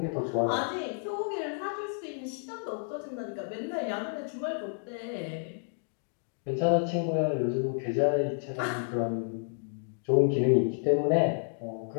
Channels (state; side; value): silent; right; digital silence